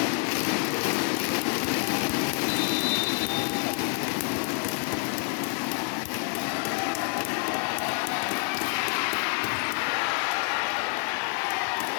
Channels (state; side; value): quieter; right; 39.5 dB